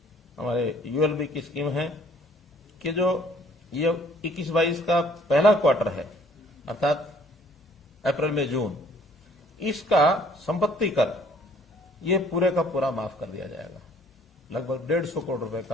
हमारे यूएलबी की स्कीम है कि जो ये 21-22 का पहला क्वार्टर है, अर्थात अप्रैल में जून, इसका संपत्ति कर ये पूरे का पूरा माफ कर दिया जाएगा। लगभग 150 करोड़ रुपए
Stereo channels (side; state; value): both; normal; correlation 0.59